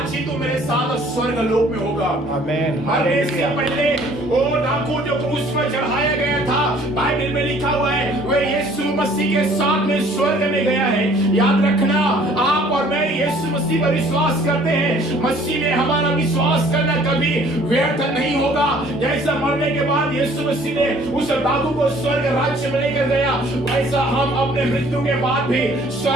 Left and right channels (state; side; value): normal; both; correlation 0.56